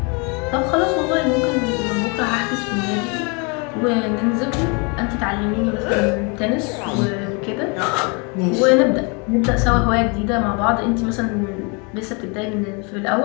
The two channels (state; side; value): quieter; right; 32.5 dB